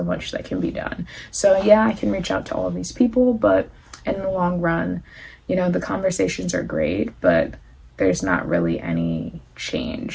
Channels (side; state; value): both; identical; correlation 1.00